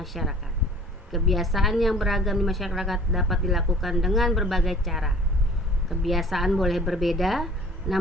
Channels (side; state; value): both; normal; correlation 0.49